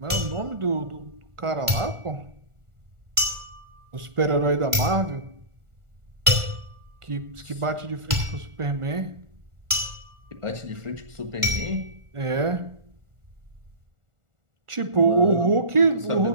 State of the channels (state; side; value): late; left; 1.4 ms